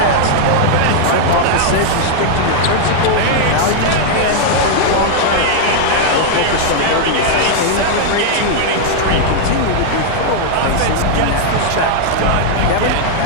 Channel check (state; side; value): different; both; correlation 0.00